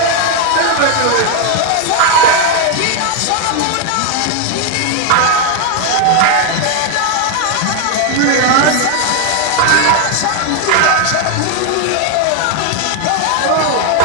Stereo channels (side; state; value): both; different; correlation 0.01